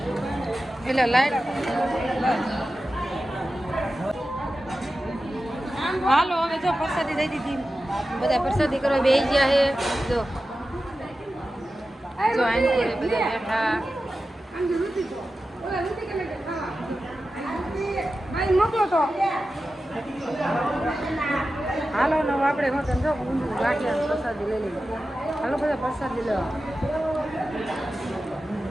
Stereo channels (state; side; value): normal; both; correlation 0.93